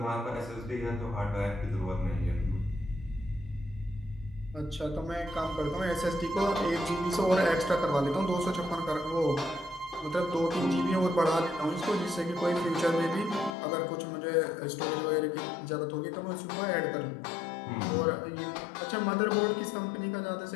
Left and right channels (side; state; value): right; drops out; at 13.6 s